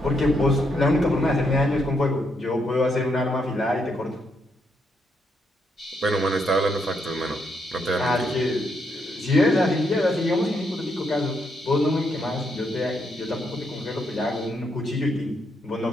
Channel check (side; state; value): both; normal; correlation 0.77